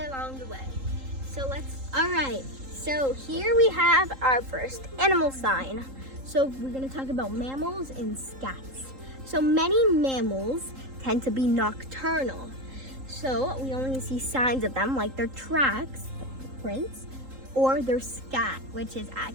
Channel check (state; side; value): late; left; 3.8 ms